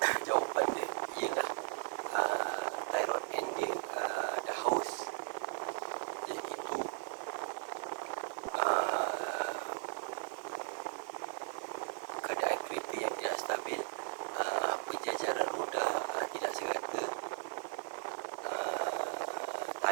jawapan dia ialah tie rod end dia dah haus, iaitu keadaan kereta yang tidak stabil, penjajaran roda tidak serata,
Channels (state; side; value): silent; left; 53 dB below the other